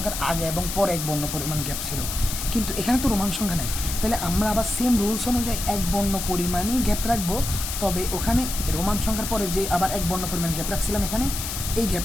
আগে এবং পরে এক বর্ণ পরিমাণ গ্যাপ ছিল, কিন্তু এখানে তো রোমান সংখ্যা নেই। তাহলে আমরা আবার সেম রুলস অনুযায়ী এক বর্ণ পরিমাণই গ্যাপ রাখবো, তবে ওখানে রোমান সংখ্যার পরে যে আবার এক বর্ণ পরিমাণ গ্যাপ রাখছিলাম এখানে, এই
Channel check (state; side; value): noise; left; hiss, 5 dB below the sound